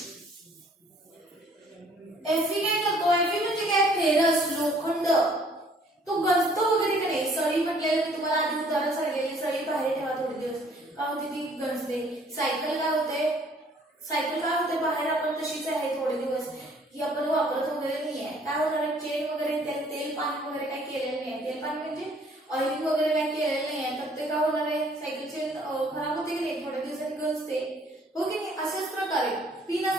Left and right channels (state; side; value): normal; both; correlation 0.59